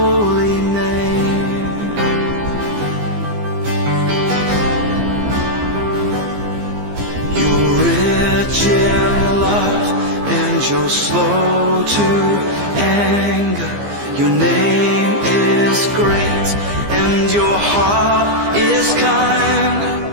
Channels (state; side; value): late; left; 15 ms